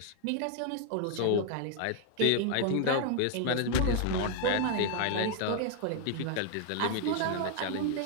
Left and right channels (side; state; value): both; different; correlation 0.00